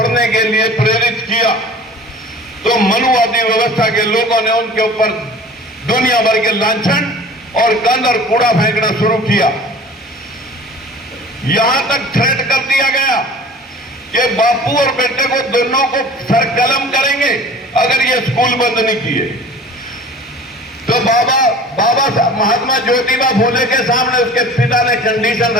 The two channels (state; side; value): normal; both; correlation 0.43